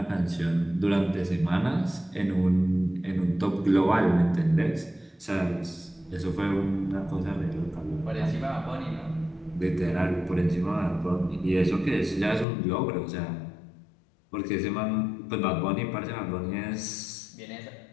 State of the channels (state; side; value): drops out; right; at 12.5 s